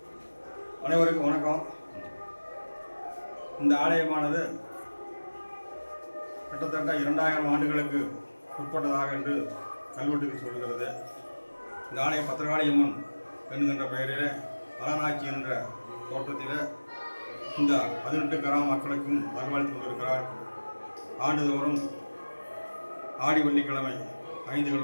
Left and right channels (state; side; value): inverted; both; correlation -1.00